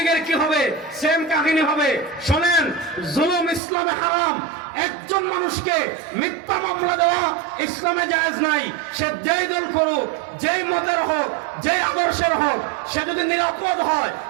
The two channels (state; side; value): drops out; left; at 3.6 s